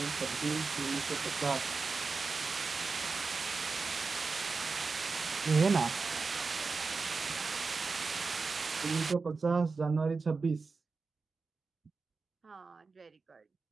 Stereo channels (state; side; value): quieter; left; 4.4 dB